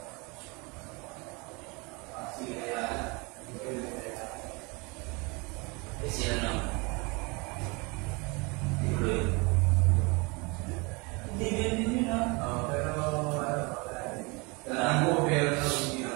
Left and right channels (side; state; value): left; quieter; 28.2 dB